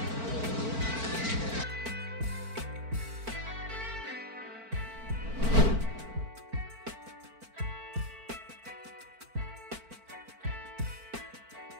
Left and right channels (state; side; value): late; left; 4.5 ms